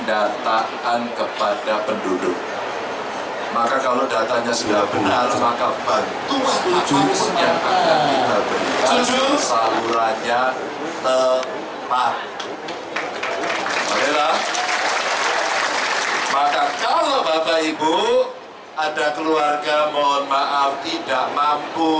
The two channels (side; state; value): both; identical; correlation 1.00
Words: kepada penduduk. Maka kalau datanya sudah benar, maka bantuan apapun yang akan kita berikan salurannya tepat. Oke lah. Maka kalau Bapak Ibu ada keluarga mohon maaf tidak